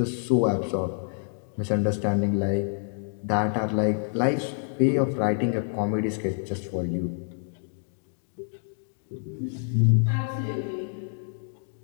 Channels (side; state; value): right; silent; digital silence